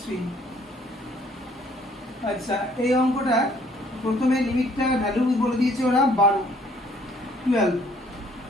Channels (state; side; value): normal; both; correlation 0.61